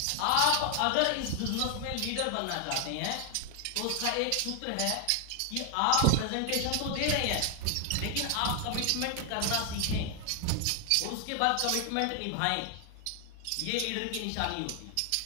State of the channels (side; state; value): both; different; correlation 0.00